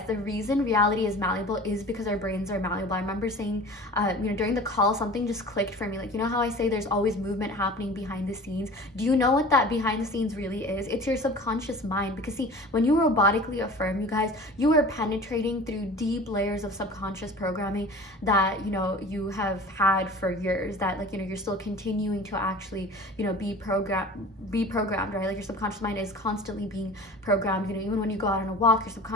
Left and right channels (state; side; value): normal; both; correlation 0.41